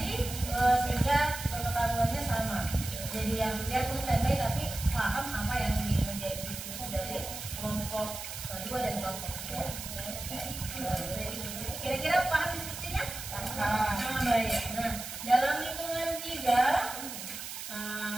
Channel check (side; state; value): right; noise; hiss, 8 dB below the sound